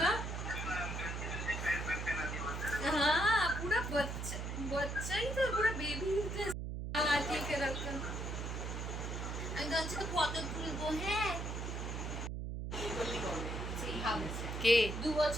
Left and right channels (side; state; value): right; noise; hum, 4 dB below the sound